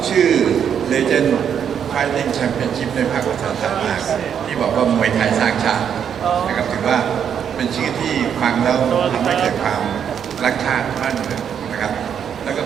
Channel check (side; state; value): left; quieter; 8.2 dB